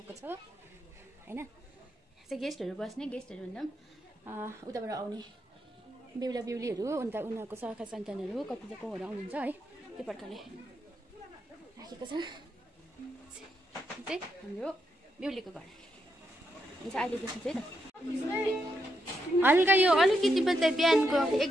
छ होइन। चाहिँ गेस्टहरू बस्ने, गेस्टहरू भन्दा पनि उताबाट आउने बेहुला बेहुलीहरू, अन्त उनीहरूको सखा सन्तानहरू कति कोहरू आउनुहुन्छ है। त्यो प्रकारले राखेको छ। चाहिँ हाम्रो बेहुलीको घर हुन्छ अहिलेदेखि चाहिँ त। हल्का यो अलिकति मात्रै बिहानको एक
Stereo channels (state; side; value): normal; both; correlation 0.81